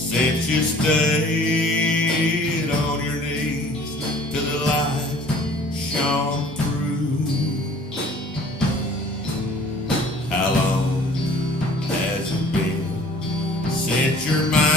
you stayed on your knees till the light shone through? How long has it been since your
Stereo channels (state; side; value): normal; both; correlation 0.51